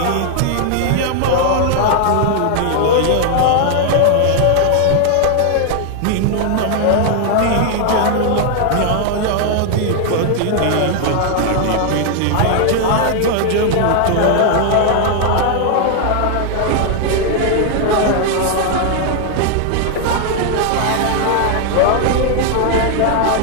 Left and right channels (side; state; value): both; different; correlation 0.00